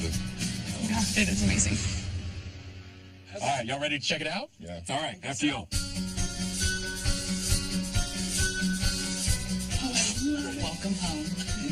Yeah, it is amazing. All right, y'all ready to check it out? Yeah. All right, after you. Welcome home.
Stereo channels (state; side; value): identical; both; correlation 1.00